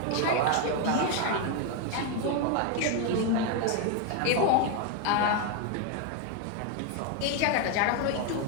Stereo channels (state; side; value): different; both; correlation 0.01